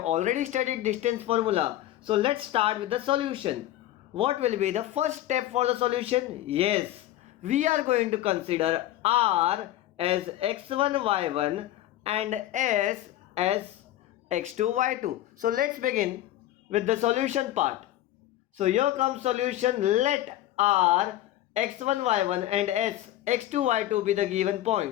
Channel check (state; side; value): quieter; right; 13.9 dB